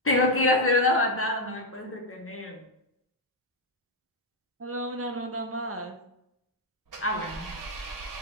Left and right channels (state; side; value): normal; both; correlation 0.02